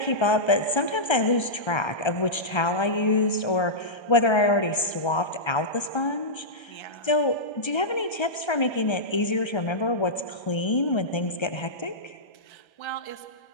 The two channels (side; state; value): right; late; 1.3 ms